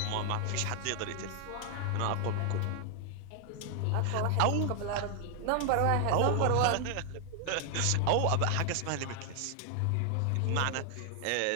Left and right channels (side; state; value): both; different; correlation 0.00